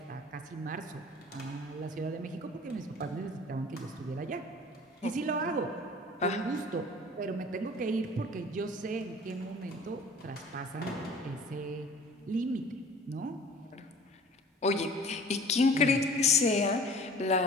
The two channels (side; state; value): both; normal; correlation 0.45